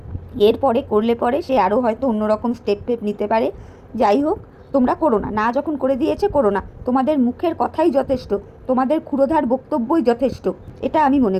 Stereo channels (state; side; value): identical; both; correlation 1.00